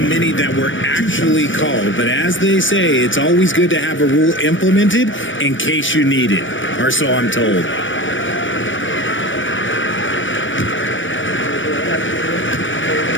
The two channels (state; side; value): late; right; 0.56 ms